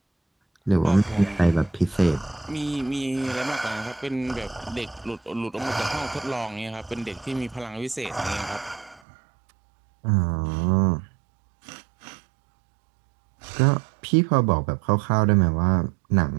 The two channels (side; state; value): left; drops out; at 9.0 s